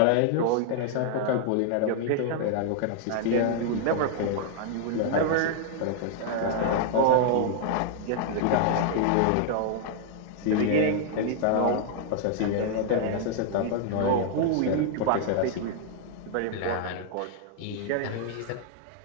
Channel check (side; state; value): both; different; correlation 0.00